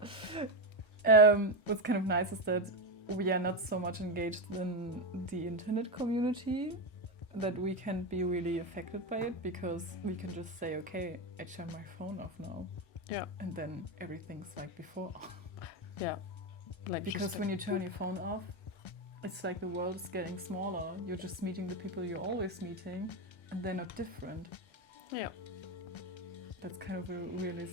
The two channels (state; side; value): late; right; 1.3 ms